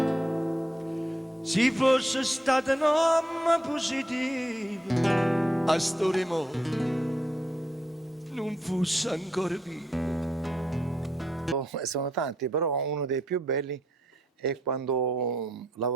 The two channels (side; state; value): both; normal; correlation 0.77